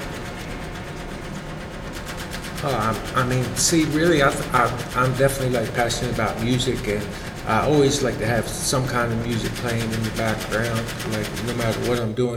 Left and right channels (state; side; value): identical; both; correlation 1.00